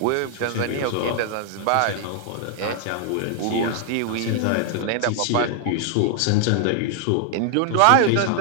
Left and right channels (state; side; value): different; both; correlation 0.00